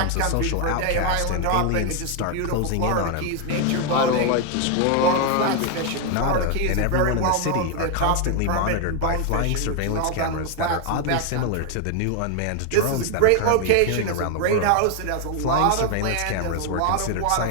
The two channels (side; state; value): both; different; correlation 0.00